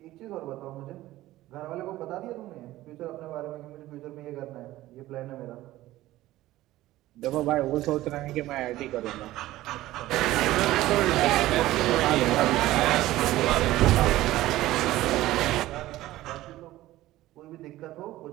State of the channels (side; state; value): left; quieter; 16.0 dB